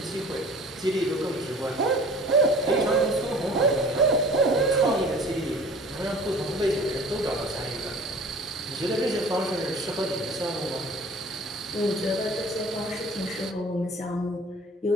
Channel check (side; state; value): both; normal; correlation 0.45